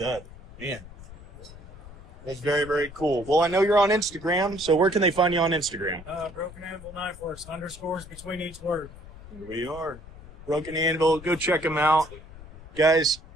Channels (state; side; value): noise; left; rumble, 17 dB below the sound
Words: Man, that's very, very cool. Well, I know you're on Instagram, so where can they find you on Instagram? Broken Anvil Knife Works, underscores between each word. Here we are. Broken Anvil. Go check him out. Guys,